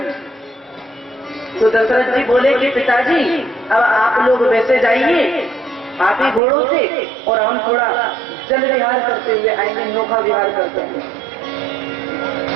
तो दशरथ जी बोले कि पिताजी अब आप लोग वैसे जाइए हाथी घोड़ों से और हम थोड़ा जल विहार करते हुए आएंगे, नौका विहार करते हैं।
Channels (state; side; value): drops out; left; at 6.4 s